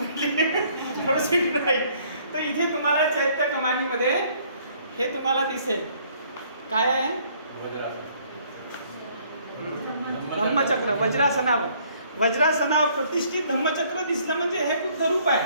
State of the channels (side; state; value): both; inverted; correlation -0.62